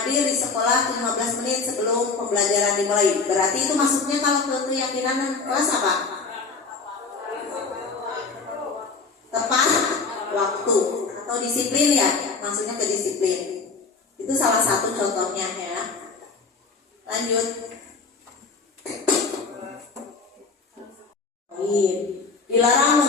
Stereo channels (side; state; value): right; quieter; 4.5 dB